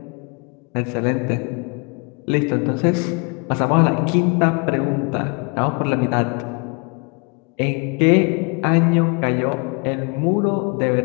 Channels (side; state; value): right; quieter; 32.3 dB